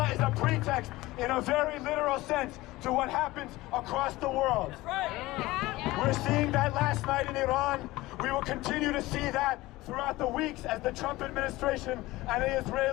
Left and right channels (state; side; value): quieter; right; 19.0 dB